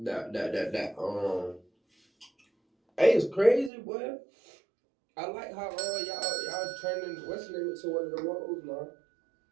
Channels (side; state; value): left; drops out; at 3.7 s